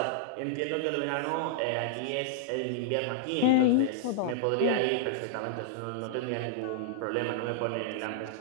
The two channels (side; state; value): both; different; correlation -0.01